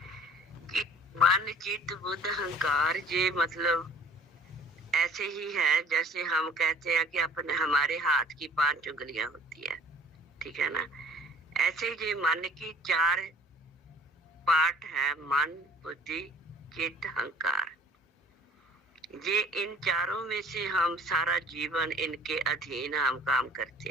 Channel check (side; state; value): both; normal; correlation 0.53